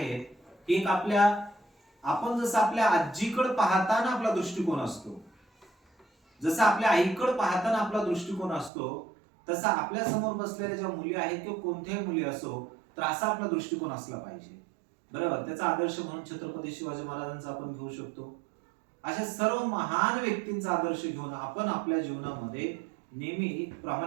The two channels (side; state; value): left; drops out; at 8.7 s